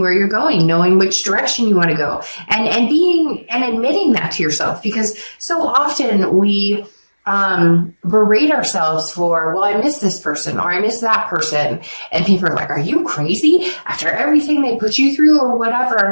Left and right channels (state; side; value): inverted; both; correlation -1.00